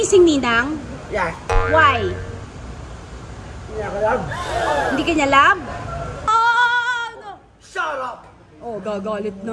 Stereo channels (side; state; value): both; identical; correlation 1.00